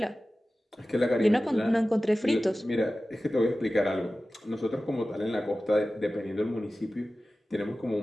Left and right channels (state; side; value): normal; both; correlation 0.96